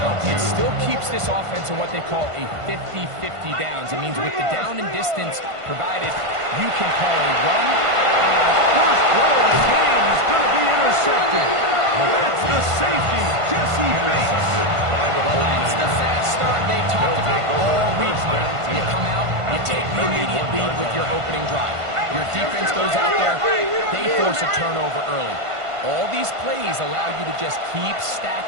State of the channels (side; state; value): left; late; 1.5 ms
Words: it still keeps this offense in what they call a 50-50 downs. It means with the down and distance provided, you can call a run. First throw of the game is going to be intercepted. That's the safety, Jesse Bates. That's the fast start they talked about all week, Mike. You come out, you take the immediate lead with your opening drive. Your defense goes out there, they force a turnover early. All these plays allow you to just keep